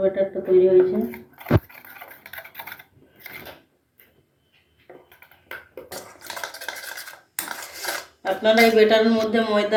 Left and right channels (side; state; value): both; identical; correlation 1.00